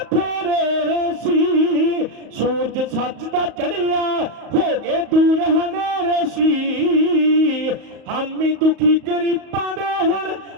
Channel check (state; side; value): late; left; 35 ms